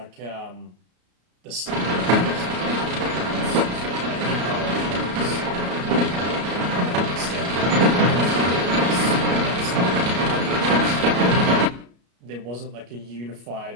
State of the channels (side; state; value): left; late; 33 ms